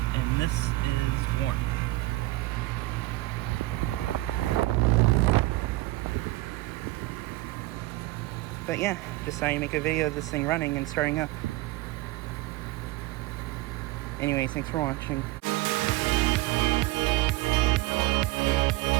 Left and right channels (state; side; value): quieter; left; 19.0 dB